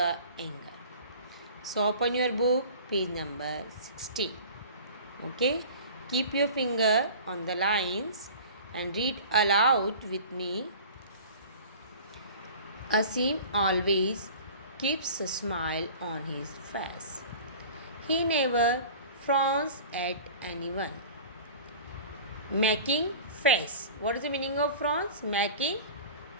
Anger. So open your book, page number 16. Okay, keep your finger on the lines and read aloud with me. Asim always keeps a smile on his face. He never frowns at anyone. Making face. What is the meaning of frowns? Making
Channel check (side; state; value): both; inverted; correlation -0.41